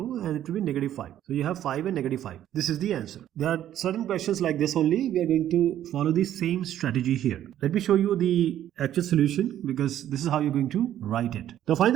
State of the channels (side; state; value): left; quieter; 11.6 dB